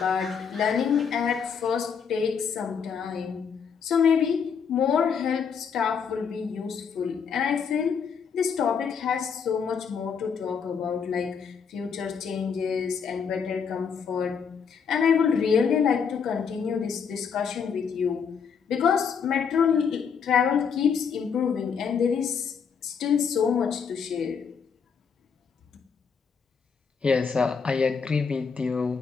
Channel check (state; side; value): quieter; right; 6.5 dB